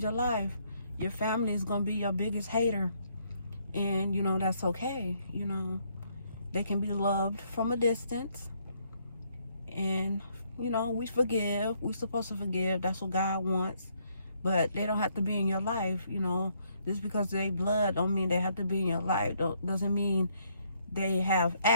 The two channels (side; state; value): both; inverted; correlation -0.70